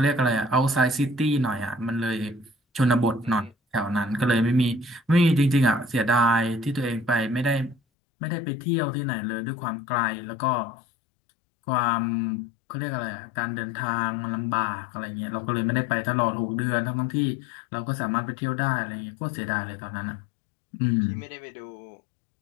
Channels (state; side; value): drops out; right; at 7.8 s